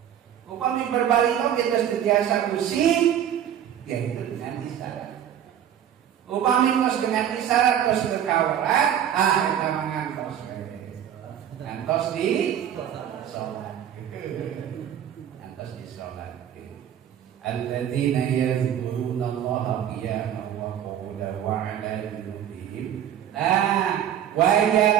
Upami berbalik kita sentiasa pusing, yaitu dengan isyarat. Upami kos dengan isyarat kos berkawaran, kita mengantos ngantos di sholat. Ngantos di sholat. Alladzina yadhkuruna Allaha qiyaman wa qu'udan wa 'ala junubihim. Nah, wa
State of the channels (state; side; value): quieter; left; 10.0 dB